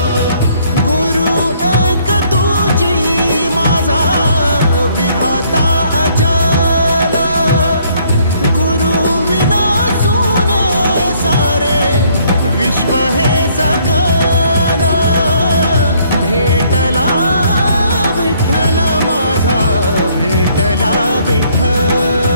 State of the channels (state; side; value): inverted; both; correlation -0.65